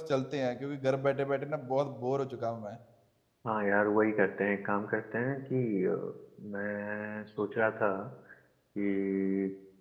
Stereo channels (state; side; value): identical; both; correlation 1.00